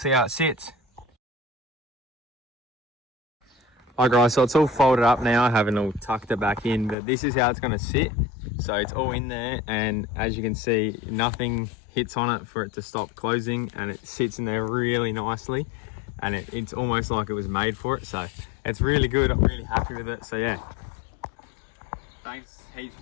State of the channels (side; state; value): right; drops out; at 7.0 s